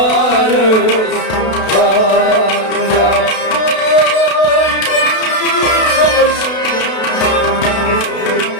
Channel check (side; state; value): right; late; 32 ms